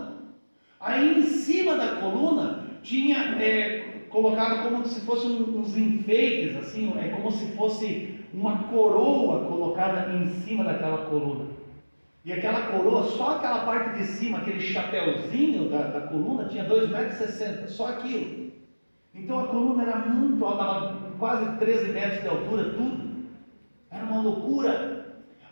Aí em cima da coluna tinha colocado como se fossem uns enfeites, assim, como se fosse uma coroa colocada em cima daquela coluna. E aquela coroa, só aquela parte de cima, aquele chapéuzinho da coluna, tinha 2,60 metros, só aquilo. Então a coluna era muito alta, dava quase 13 metros de altura, tudo. Era uma loucura.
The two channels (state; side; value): inverted; both; correlation -1.00